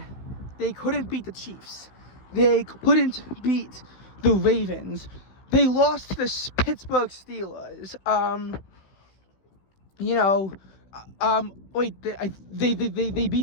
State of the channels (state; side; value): late; right; 16 ms